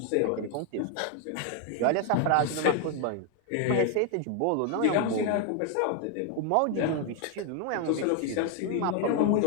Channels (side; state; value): both; different; correlation 0.01